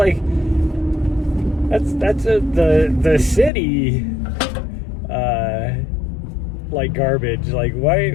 that's the city like garbage. Like,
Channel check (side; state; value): right; drops out; at 3.5 s